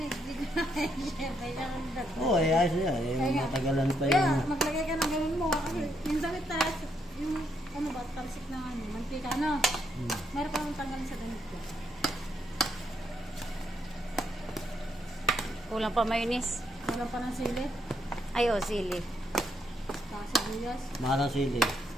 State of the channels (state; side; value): normal; both; correlation 0.76